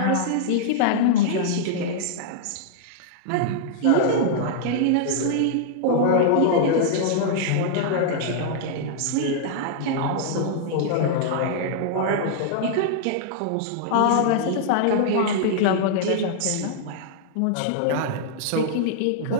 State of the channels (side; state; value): both; different; correlation -0.01